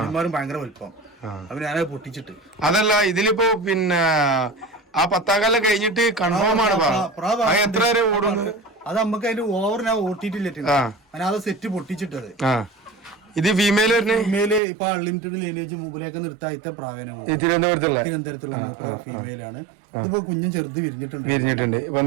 ഭയങ്കര വലിപ്പം. അപ്പൊ ഞാനത് പൊട്ടിച്ചിട്ട്. അതല്ല ഇതിലിപ്പോ പിന്നെ ആ 10 കല്ലം കഴിഞ്ഞിട്ട് കൺഫേം ആണ് എത്ര വരെ ഓടുന്നത്? അത് നമുക്ക് അതിന്റെ ഓവർ ഞാൻ ഓട്ടിട്ടില്ല. അത് സെറ്റ് പൊട്ടിച്ചിട്ടത്. ഇത് ഫീമെയിൽ ഫീമെയില് ഇപ്പൊ അൺലിമിറ്റഡ് ലൈനേജ് മുമ്പിലേക്ക് നിർത്താത്ത പ്രാവീണ്യമാണ്. തിരുവനന്തപുരത്തുള്ള ഫീമെയിലാണ്. ഇതിപ്പോ കുഞ്ഞും ചെറുത് വിരിഞ്ഞിട്ടുണ്ട്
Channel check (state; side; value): drops out; left; at 14.6 s